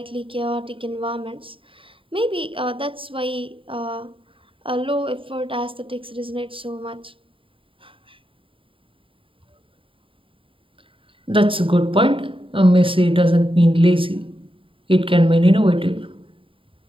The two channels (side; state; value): left; late; 0.25 ms